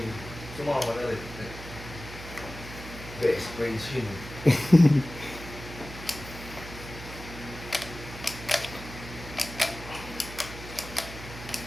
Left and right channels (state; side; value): noise; right; hum, 12 dB below the sound